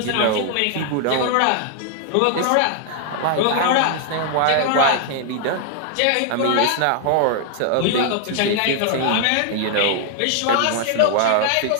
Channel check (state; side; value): different; both; correlation 0.00